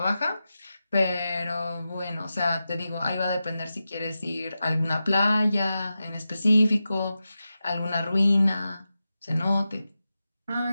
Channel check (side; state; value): both; inverted; correlation -0.92